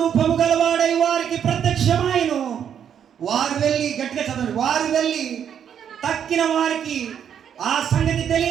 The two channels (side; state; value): left; quieter; 8.7 dB